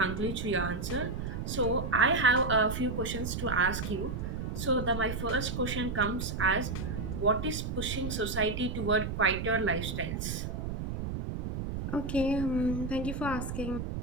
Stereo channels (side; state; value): right; noise; rumble, 4 dB below the sound